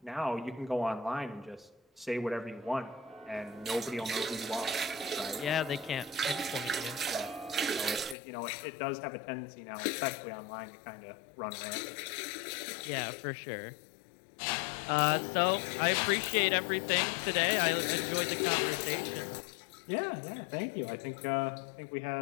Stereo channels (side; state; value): right; drops out; at 8.2 s